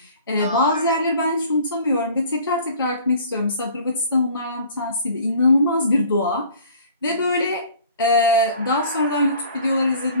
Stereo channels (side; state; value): both; inverted; correlation -0.50